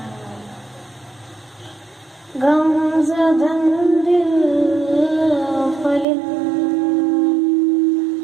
गमज़दन दिल फलिन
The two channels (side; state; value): left; drops out; at 6.1 s